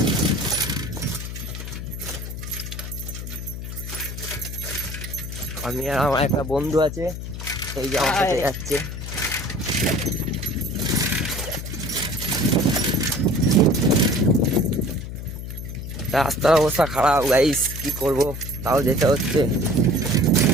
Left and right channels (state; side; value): noise; left; hum, 8 dB below the sound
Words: আমি আর আমার একটা বন্ধু আছে, এই যে আমার সাথে যাচ্ছে। রাস্তার অবস্থা খারাপ গাইস, কি করব, তাও যেতে হচ্ছে।